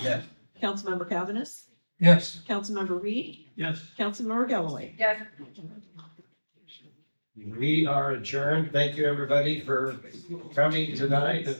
Yes. Councilmember Cavanagh, Yes. Councilmember Reed, Yes. Councilmember Galloway. Yeah. We are adjourned. Thank you, everybody, for coming tonight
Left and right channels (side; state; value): both; inverted; correlation -1.00